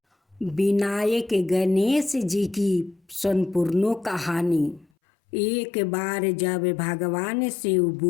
विनायक गणेश जी की संपूर्ण कहानी। एक बार जब भगवान शिव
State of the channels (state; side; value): drops out; right; at 4.9 s